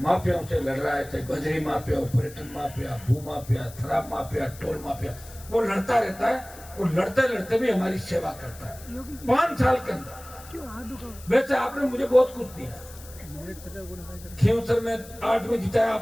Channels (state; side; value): noise; left; hiss, 19 dB below the sound